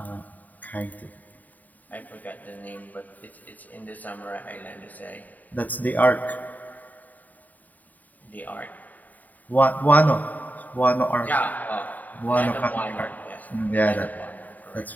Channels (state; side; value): late; right; 0.080 ms